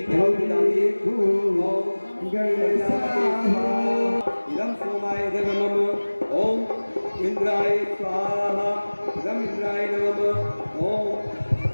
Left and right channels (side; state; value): both; inverted; correlation -1.00